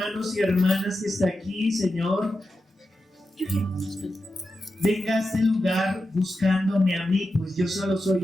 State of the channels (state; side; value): normal; both; correlation 0.90